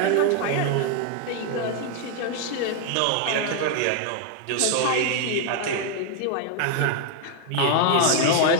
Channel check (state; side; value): different; both; correlation 0.00